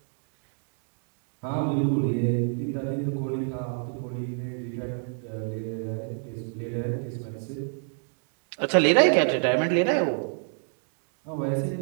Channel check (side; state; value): left; silent; 57 dB below the other